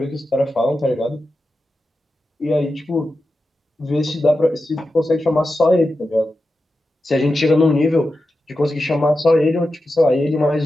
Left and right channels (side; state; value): both; normal; correlation 0.91